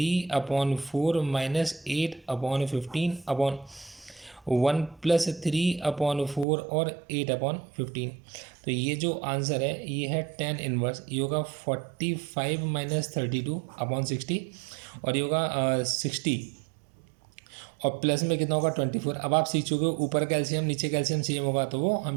माइनस 8/15 अपॉन 1 + 3/4 और 8/15। तो ये जो आंसर है ये है 10 इनवर्स। ये होगा 45 - 32/60, और ये होगा 60 और प्लस में कितना होगा 24। अब आप सीख चुके हो ऊपर का एलसीएम नीचे का एलसीएम सेम होगा तो वो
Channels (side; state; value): left; drops out; at 6.5 s